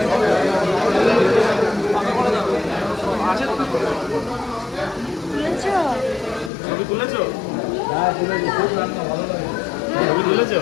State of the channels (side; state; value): right; drops out; at 6.5 s